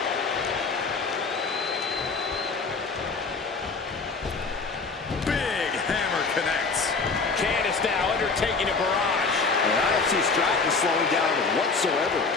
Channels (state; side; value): quieter; right; 4.3 dB